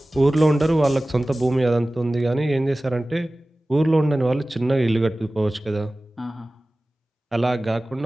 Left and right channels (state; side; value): normal; both; correlation 0.97